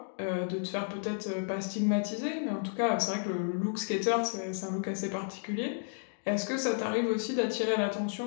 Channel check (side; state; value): right; silent; digital silence